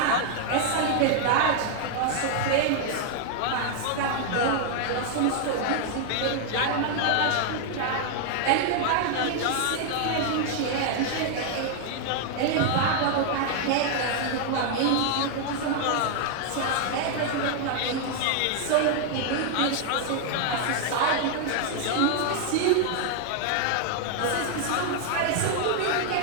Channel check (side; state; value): both; different; correlation 0.00